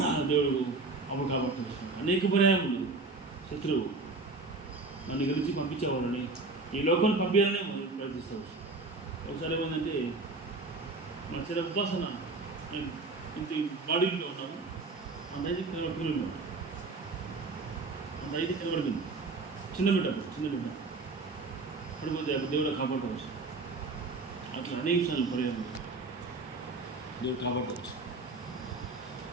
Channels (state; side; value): quieter; left; 3.5 dB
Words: దేవుడు అప్పుడు కాబట్టి అనేక పర్యాయములు శత్రువు నన్ను గురించి పంపించేవాడని, ఈ లోకం పంపించాలని ప్రయత్నిస్తావు. ఒకసారి ఏమైందంటే మా చిన్న ఉపాసన నేను ఇంత బాడీలో ఉన్నాము, అంత అయితే కనబడుతున్నాను, అంత అయితే కనబడుతుంది. చిన్న బిడ్డ పడిపోతే అప్పుడు దేవుడు కాపాడుకోవచ్చు. అట్లా అనేక సార్లు పర్యాలు దేవుడు కాపాడుకోవచ్చు.